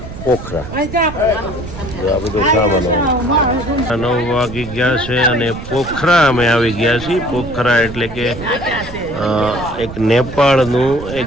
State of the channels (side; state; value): right; noise; rumble, 11 dB below the sound